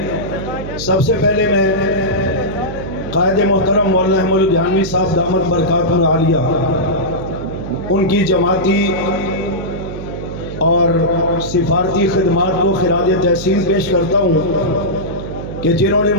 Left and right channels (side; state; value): right; noise; hum, 9 dB below the sound